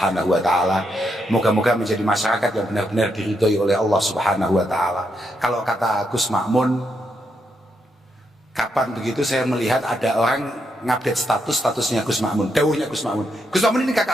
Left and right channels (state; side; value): normal; both; correlation 0.80